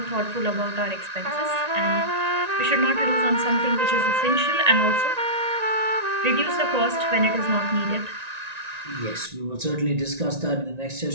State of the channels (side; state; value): left; late; 1.9 ms